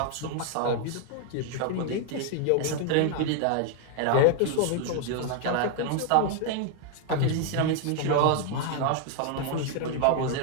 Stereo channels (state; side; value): different; both; correlation 0.00